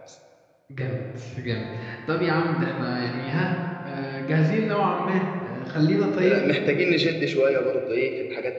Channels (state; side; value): identical; both; correlation 1.00